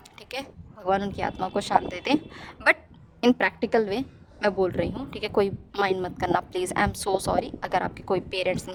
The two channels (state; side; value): identical; both; correlation 1.00